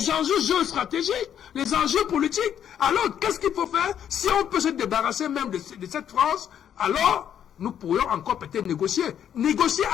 géostratégiques, les enjeux politiques. Alors, qu'est-ce qu'il faut faire? Si on peut se débarrasser même de cette France, alors nous pourrions encore peut-être négocier. Négocier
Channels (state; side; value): quieter; right; 9.4 dB